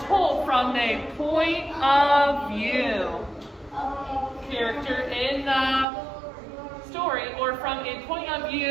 told from a point of view. Character in the story, or from a point of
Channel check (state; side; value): drops out; left; at 5.9 s